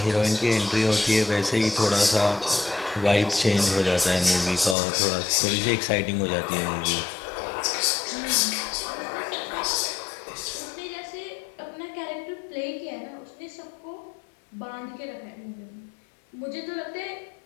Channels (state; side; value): drops out; right; at 4.8 s